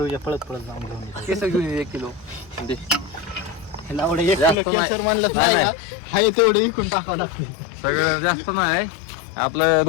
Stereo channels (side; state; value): right; drops out; at 4.5 s